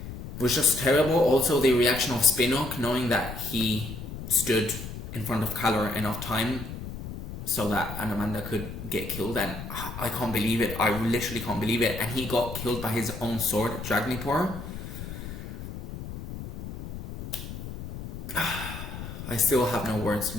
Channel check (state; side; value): noise; left; rumble, 9 dB below the sound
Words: was just terrible. Also the reaction of Spinnock, knowing that he stood in front of Calor enough time so that Anamanda could get killed, and I can't believe it. I literally can't believe it. And he got killed by his own sword, Dragnipor. I still have no words.